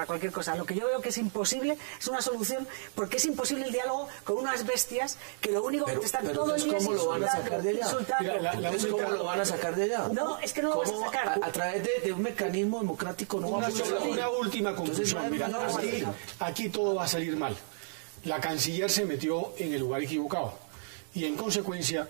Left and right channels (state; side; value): silent; left; 57 dB below the other